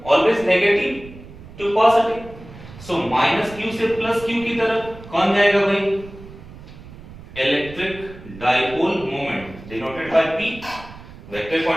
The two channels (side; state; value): right; noise; rumble, 17 dB below the sound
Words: always negative to positive. So minus q से प्लस क्यू की तरफ कौन जाएगा भाई, electric dipole moment denoted by p, vector